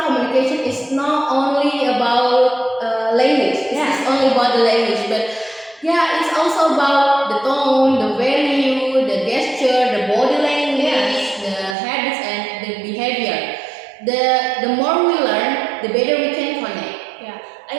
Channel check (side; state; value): left; drops out; at 11.8 s